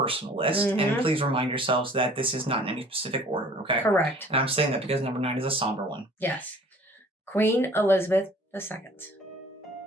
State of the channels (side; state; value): both; normal; correlation 0.50